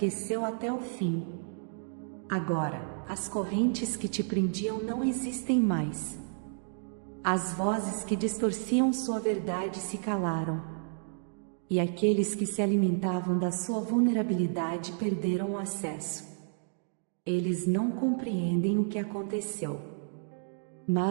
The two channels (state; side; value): silent; left; digital silence